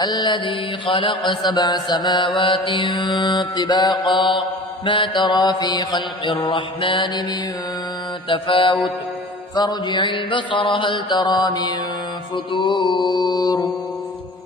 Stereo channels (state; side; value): normal; both; correlation 0.41